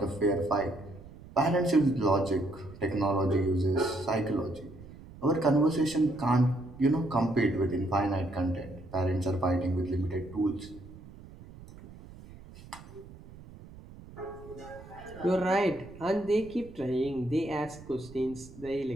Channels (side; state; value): right; noise; rumble, 18 dB below the sound